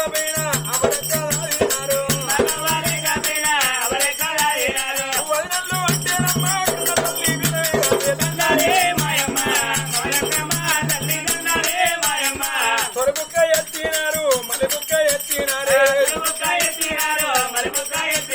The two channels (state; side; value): identical; both; correlation 1.00